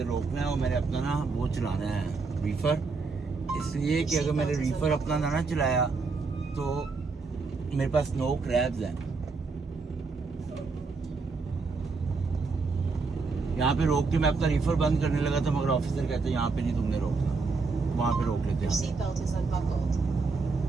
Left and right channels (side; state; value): left; quieter; 4.3 dB